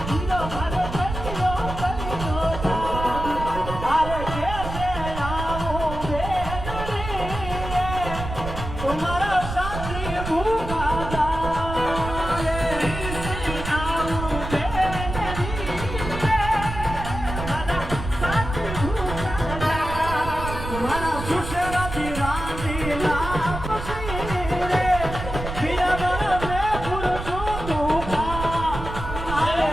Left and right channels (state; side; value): noise; right; rumble, 7 dB below the sound